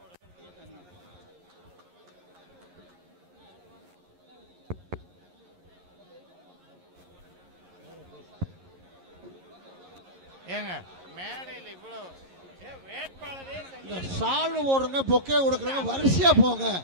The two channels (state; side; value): late; left; 11 ms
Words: ஏங்க மேடையில் இவ்வளவு வேட்பாளரே இந்த சால்வு போடுறங்க, பொக்கே கொடுக்குறங்க, வரிசையா போங்க.